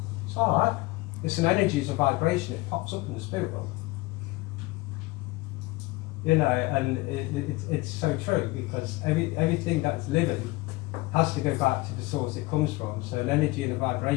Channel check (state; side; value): quieter; right; 21.8 dB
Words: it's all right, it's an energy, it's a vibration, it pops up in the spirit world. You know, and it's so true, because everything that's living has to go back to the source it comes from. So an energy and a